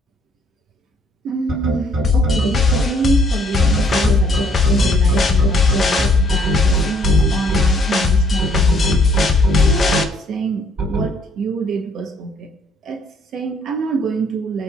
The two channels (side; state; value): both; normal; correlation 0.64